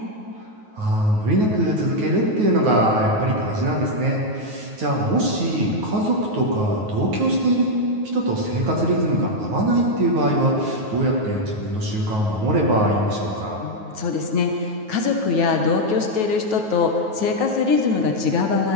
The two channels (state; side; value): late; left; 9.4 ms